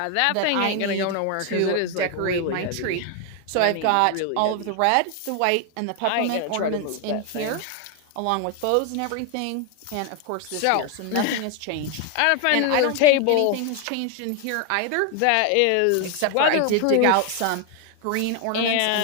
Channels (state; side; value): different; both; correlation 0.01